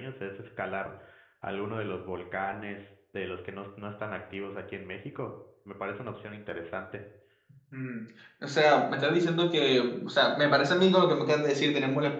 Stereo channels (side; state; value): both; identical; correlation 1.00